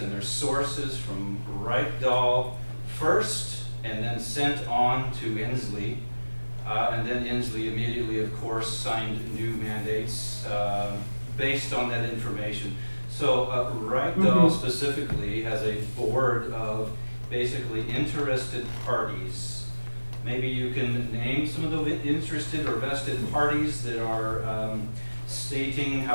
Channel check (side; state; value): both; inverted; correlation -1.00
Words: their sources from Reichdahl first, and then sent on to Inslee. And then Inslee immediately, of course, signed new mandates based on that information. So Reichdahl specifically has a board of basically interested parties. Maybe you can name some of the interested or vested parties that are stating